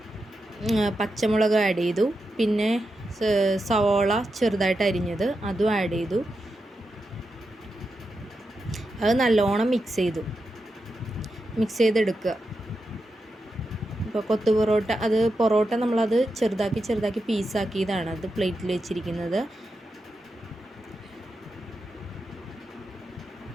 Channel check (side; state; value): both; normal; correlation 0.88